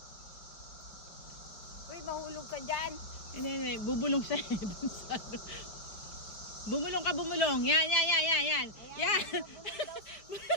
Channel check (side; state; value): right; late; 5.0 ms